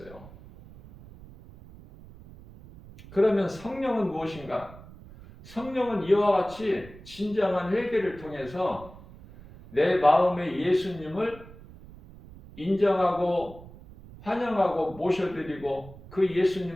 그러면 성령은 무엇인가? 성령은 이와 같이 진정한 회개를 통해서 내 마음에 예수님을 인정하고 환영하고 모셔드리고 그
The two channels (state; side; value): noise; right; rumble, 19 dB below the sound